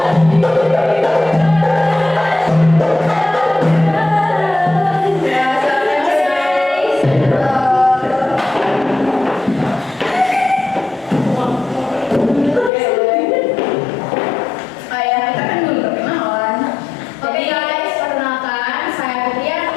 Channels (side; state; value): right; drops out; at 12.7 s